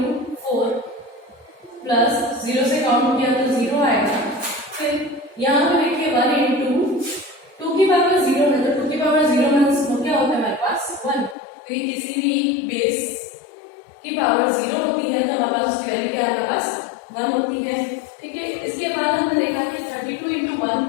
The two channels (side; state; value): right; drops out; at 11.4 s